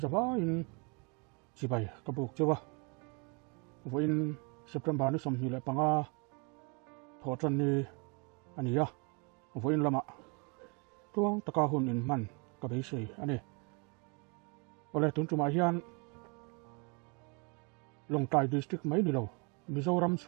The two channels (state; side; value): quieter; left; 32.7 dB